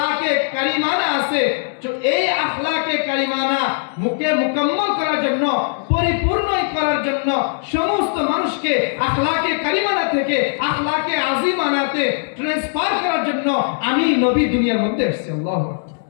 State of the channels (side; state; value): right; silent; digital silence